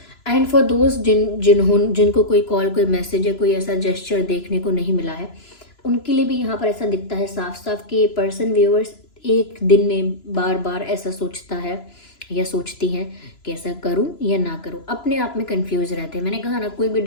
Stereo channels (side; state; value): right; late; 3.0 ms